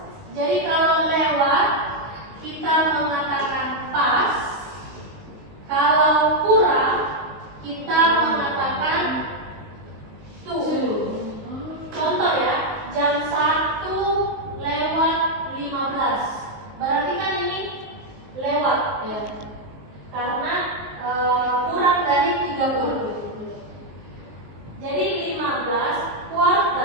Jadi kalau lewat kita mengatakan pas, kalau kurang kita mengatakan to. Contoh ya, jam 1:15. Berarti kan ini lewat ya. Karena kurang dari 30. Jadi 15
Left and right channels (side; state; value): left; late; 18 ms